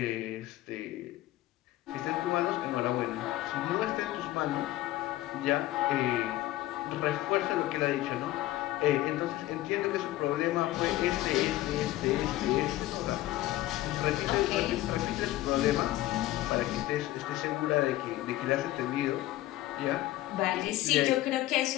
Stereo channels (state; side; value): quieter; right; 15.7 dB